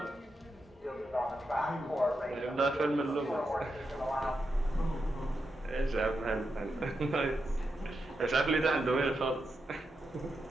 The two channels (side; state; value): both; normal; correlation 0.86